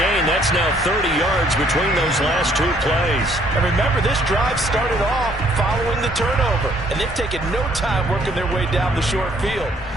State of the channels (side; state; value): both; normal; correlation 0.64